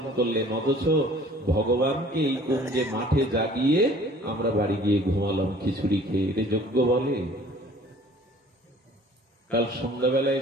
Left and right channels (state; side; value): normal; both; correlation 0.51